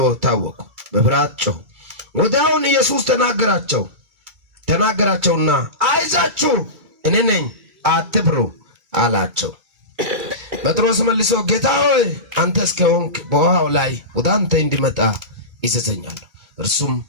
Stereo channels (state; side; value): late; left; 2.2 ms